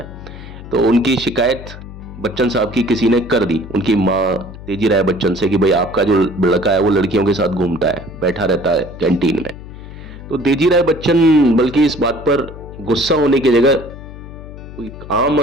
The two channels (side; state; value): left; noise; hum, 14 dB below the sound